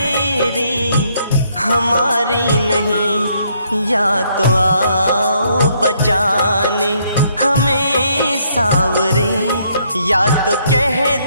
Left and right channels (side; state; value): both; inverted; correlation -0.70